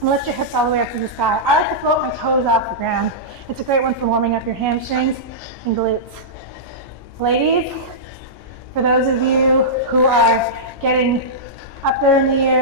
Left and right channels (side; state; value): both; normal; correlation -0.14